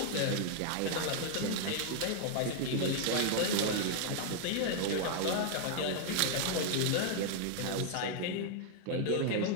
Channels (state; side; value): different; both; correlation 0.00